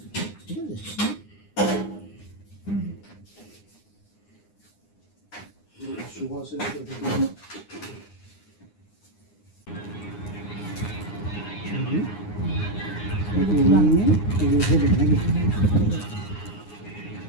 ঠিক আছে। সুভাষের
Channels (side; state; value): right; late; 9.7 ms